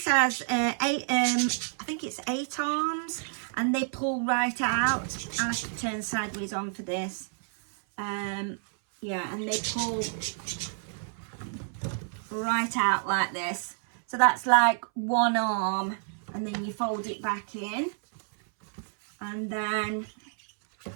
has I think it's 8 arms, and they pull right out. I have to turn sideways on for this. Yeah, and they pull right out like this. So that's like one arm, and then you fold it back in, and then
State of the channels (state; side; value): silent; left; 59 dB below the other